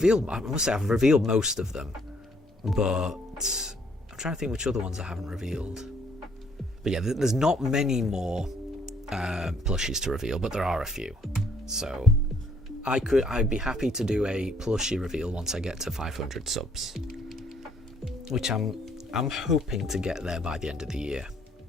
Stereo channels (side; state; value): both; normal; correlation 0.66